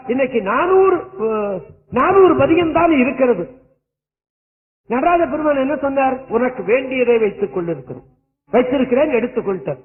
இன்னைக்கு 400 பதியம் தான் இருக்கிறது. நடராஜ பெருமான் என்ன சொன்னார், உனக்கு வேண்டியதை வைத்துக் வைத்திருக்கிறேன் எடுத்துக்கொள்ட்டார்.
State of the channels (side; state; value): both; identical; correlation 1.00